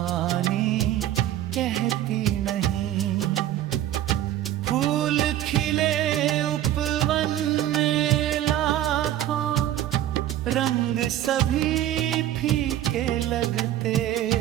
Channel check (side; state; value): left; quieter; 12.6 dB